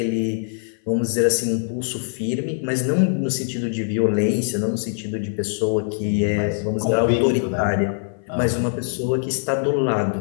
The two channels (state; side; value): silent; right; 55 dB below the other